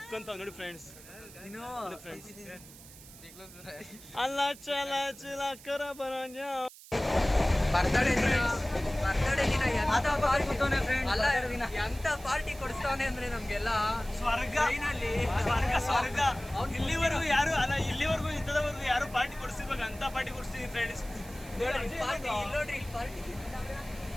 ನೋಡಿ ಫ್ರೆಂಡ್ಸ್, ನೋಡಿ ಫ್ರೆಂಡ್ಸ್, ಅಲ್ಲ ಚಲ ಚಿಲ ಕರ ಬರಂಜ ಬರ್ತಡೇ ದಿನ ಎಂತ ಪಾರ್ಟಿ ಕೊಡಿಸ್ತಾವನೆ ಅಂದ್ರೆ ನಮ್ಗೆಲ್ಲ ಸ್ವರ್ಗ ಸ್ವರ್ಗ. ಇಲ್ಲಿವರೆಗೂ ಯಾರು ಅಲ್ಲ, ಇಲ್ಲಿವರೆಗೂ ಇಂಥದವರೆಗೂ ಯಾರು ಪಾರ್ಟಿ ಕೊಡಿಸಿರ್ಬೇಕು ಅಂತ ಪಾರ್ಟಿ ಕೊಡಿಸ್ತೀನಿ ಫ್ರೆಂಡ್ಸ್.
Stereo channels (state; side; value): noise; right; hiss, 19 dB below the sound